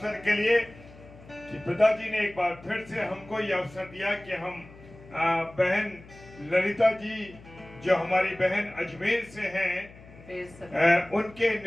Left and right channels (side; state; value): left; noise; hum, 21 dB below the sound